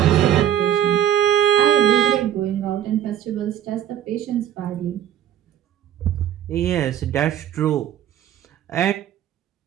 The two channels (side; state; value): left; quieter; 10.8 dB